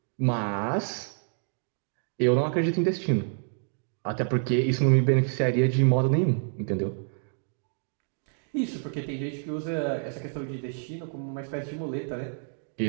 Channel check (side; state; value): left; silent; digital silence